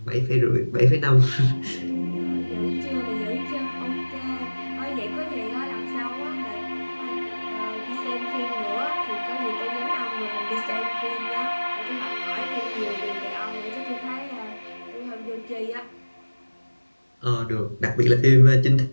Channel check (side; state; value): both; inverted; correlation -1.00